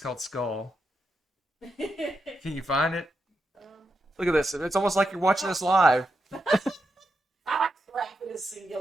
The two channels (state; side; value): normal; both; correlation 0.85